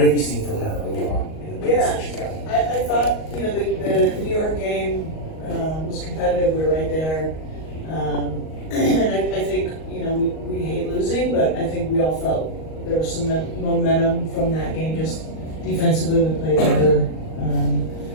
have you seen from her early on in the minutes that she's got? I thought the New York game was competitive. We were right there, and I think we hate losing, but I think we all felt there was some momentum from that game. Just defensively, we played better.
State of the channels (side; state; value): right; late; 38 ms